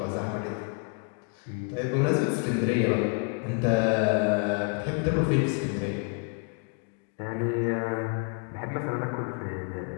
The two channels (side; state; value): right; quieter; 35.7 dB